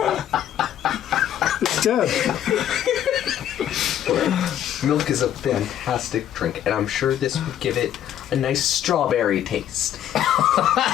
It's dead. Milk is a fantastic drink, and I'm sure this would give it a nice strawberry taste.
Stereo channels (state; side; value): quieter; right; 10.8 dB